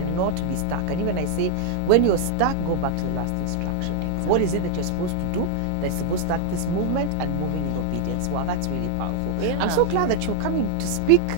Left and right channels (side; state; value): both; different; correlation -0.01